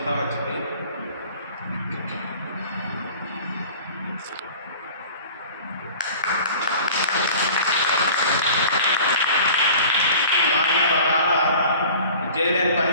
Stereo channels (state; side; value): inverted; both; correlation -0.43